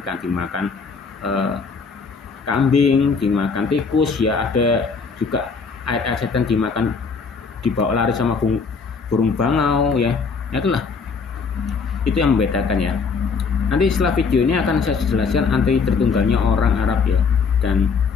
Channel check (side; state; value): right; quieter; 5.1 dB